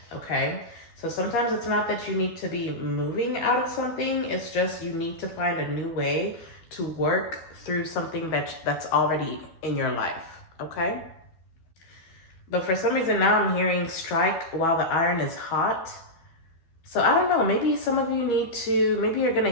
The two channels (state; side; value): late; right; 12 ms